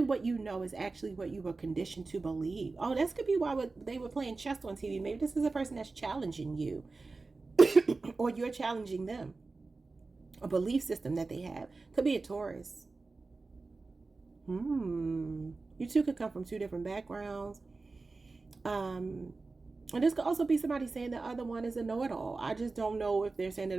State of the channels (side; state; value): left; quieter; 3.8 dB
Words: what you know is actually what you were conditioned to believe? Oh, this could be why they were playing chess on TV. Maybe this is a person that's challenging you. Or you're challenging them. A belief system that they have. Could be a Taurus. You two could come from two different backgrounds. And this could also be somebody saying the other one is a know-it-all. I just don't know if they're saying it